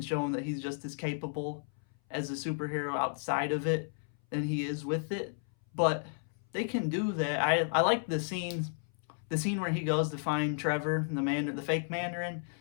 show him that he's just as capable as a superhero outside of it than he is with it. But they can do that. I like the scene where he goes to find Trevor, the fake Mandarin.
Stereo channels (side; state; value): right; silent; 56 dB below the other